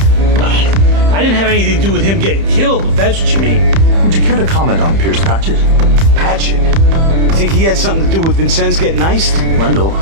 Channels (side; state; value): left; late; 30 ms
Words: I didn't have anything to do with him getting killed, if that's what you mean. Would you care to comment on Pierce Patchett? Patchett? You think he had something to do with Vincennes getting iced? Randall.